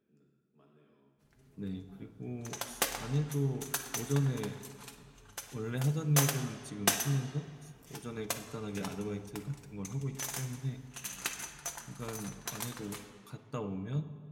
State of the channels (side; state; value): both; identical; correlation 1.00